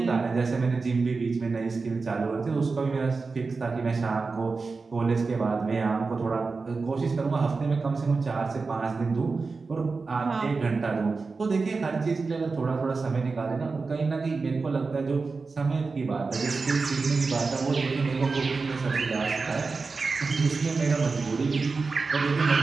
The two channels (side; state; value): left; quieter; 4.3 dB